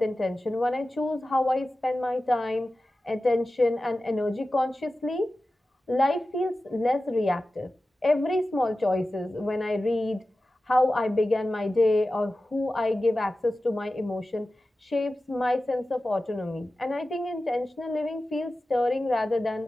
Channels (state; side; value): normal; both; correlation 0.95